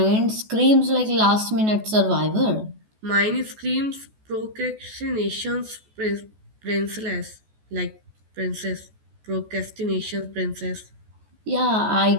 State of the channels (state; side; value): late; left; 14 ms